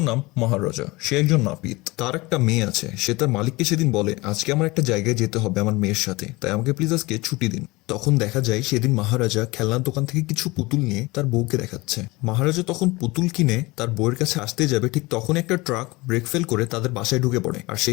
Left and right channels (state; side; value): quieter; right; 22.5 dB